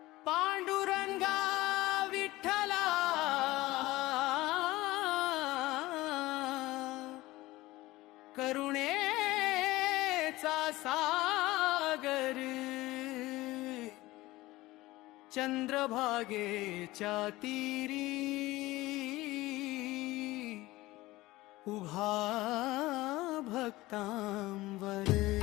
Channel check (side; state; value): right; quieter; 18.8 dB